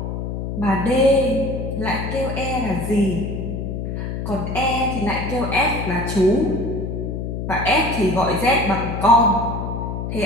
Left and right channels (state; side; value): noise; left; hum, 4 dB below the sound